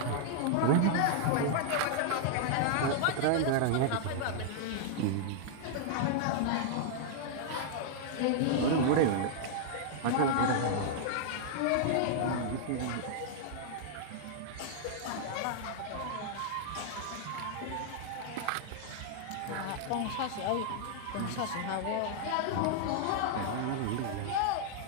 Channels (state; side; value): different; both; correlation -0.01